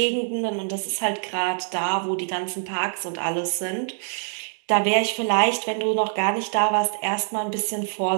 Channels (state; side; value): silent; left; digital silence